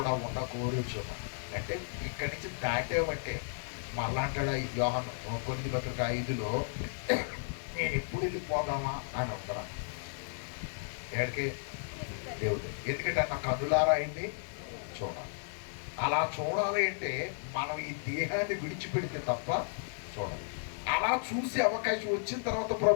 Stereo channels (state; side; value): silent; right; digital silence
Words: ఉండకూరుచున్నాను. అంటే ఇక్కడి నుంచి దాటేవంటే మళ్ళా అంటాడు యోహాను కొరింథీ పత్రిక 5లో, నేను ఎప్పుడు వెళ్ళిపోదామా అని అంటున్నాను. ఎక్కడికి? దేవుడు. ఎందుకంటే నా కన్నులారా అయింది చూడాలి. అలా చూడాలి అంటే మనం ఈ దేహాన్ని విడిచిపెడితే తప్ప చూడాలి. అలా చూసే అవకాశం వచ్చిన తర్వాత